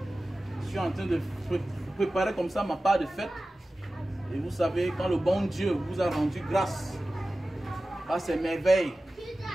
je suis en train de préparer comme ça ma part de fête. Et vous savez, quand le bon Dieu vous a rendu grâce à ces merveilles,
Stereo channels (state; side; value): normal; both; correlation 0.96